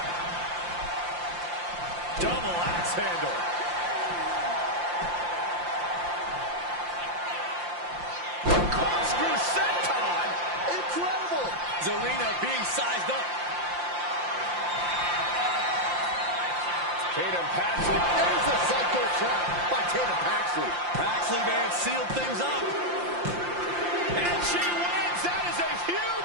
Double axe handle. Corkscrew senton. Incredible. Zelina being sized up. Tatum Paxley. There's a psycho trap by Tatum Paxley. Paxley may have sealed things up. And she wins. That is a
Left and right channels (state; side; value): late; left; 5.7 ms